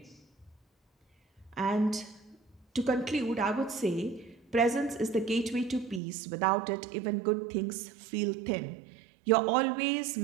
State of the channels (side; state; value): left; drops out; at 6.0 s